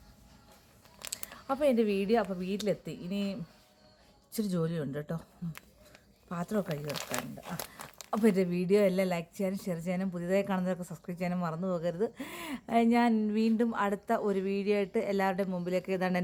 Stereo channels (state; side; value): identical; both; correlation 1.00